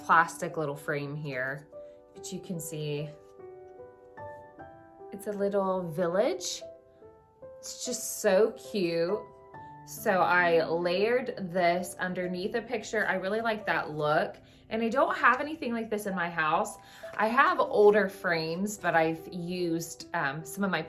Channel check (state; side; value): identical; both; correlation 1.00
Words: plastic little frame here, but you can see it's a little village. It's just so cute. So I layered this underneath a picture. I really like that look. And I don't have anything like this in my house. I have older frames, but I've used some of my